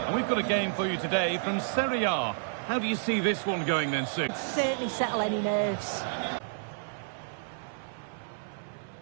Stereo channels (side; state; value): left; silent; 58 dB below the other